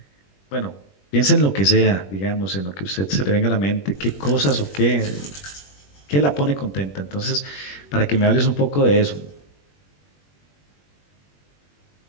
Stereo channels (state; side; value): late; right; 21 ms